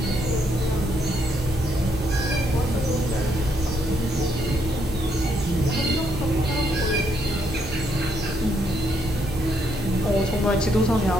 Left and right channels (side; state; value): both; normal; correlation 0.74